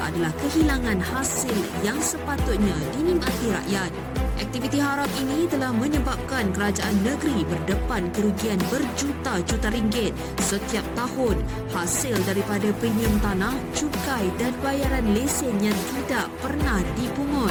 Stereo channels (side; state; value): both; identical; correlation 1.00